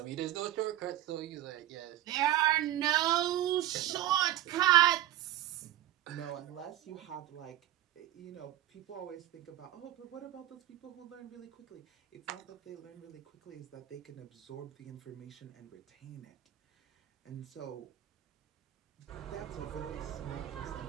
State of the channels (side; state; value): left; quieter; 13.6 dB